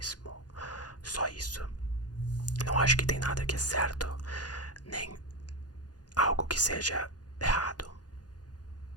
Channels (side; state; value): right; late; 0.69 ms